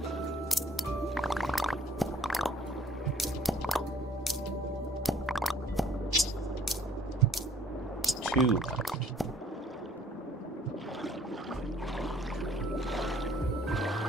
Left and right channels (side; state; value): both; normal; correlation 0.59